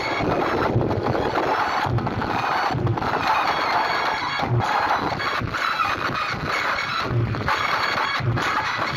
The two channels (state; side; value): identical; both; correlation 1.00